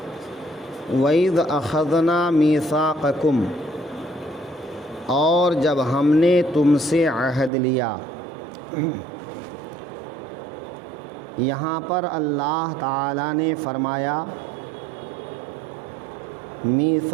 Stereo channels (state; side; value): drops out; left; at 7.5 s